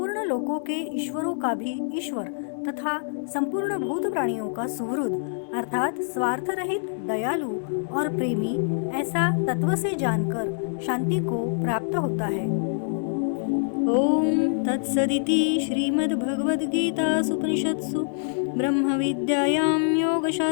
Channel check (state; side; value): silent; right; 57 dB below the other